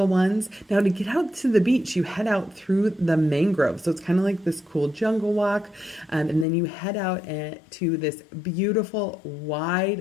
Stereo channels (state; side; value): drops out; right; at 6.5 s